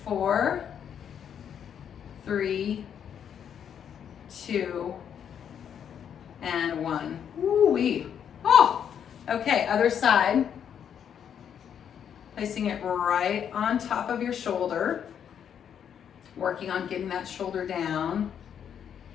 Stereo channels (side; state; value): right; quieter; 8.5 dB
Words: 4, 3, 2, and 1. Woo-wee. Oh, okay, other side. Placing it right on top of your shoulder. Working on getting that shoulder down.